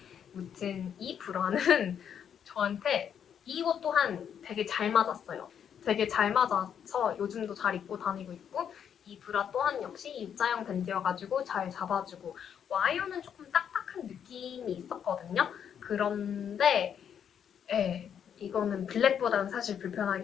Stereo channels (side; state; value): right; quieter; 8.4 dB